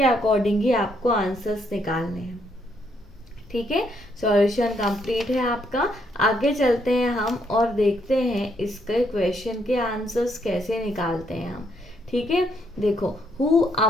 अकॉर्डिंग ही आपको आंसर्स निकालने हैं, ठीक है। सॉल्यूशन कंप्लीट है आपका। आगे चलते हैं हम और देखते हैं इसके क्वेश्चन के आंसर्स कैसे निकालते हैं हम, ठीक है। देखो, who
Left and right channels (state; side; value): normal; both; correlation 0.73